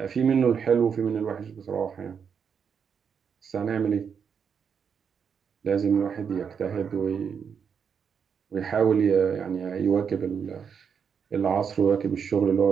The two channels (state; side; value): quieter; left; 6.8 dB